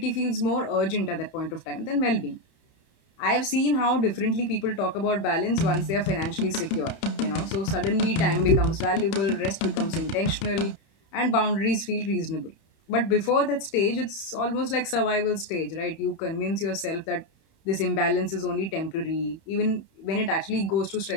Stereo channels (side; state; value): right; late; 30 ms